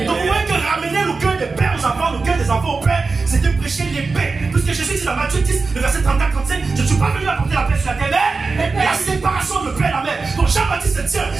Donc vous voyez que ramener le cœur des pères aux enfants, le cœur des enfants au Père, c'était prêcher les paix. Puisque Jésus dit dans Matthieu 10, le verset 34-35, je ne suis pas venu apporter la paix sur la terre, mais la séparation de père et la mère. Donc Jean-Baptiste se tient,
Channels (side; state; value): left; quieter; 4.2 dB